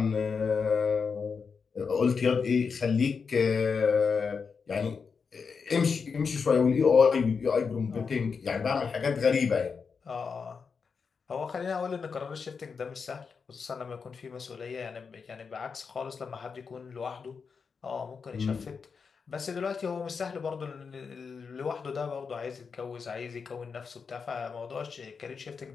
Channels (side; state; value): right; quieter; 5.5 dB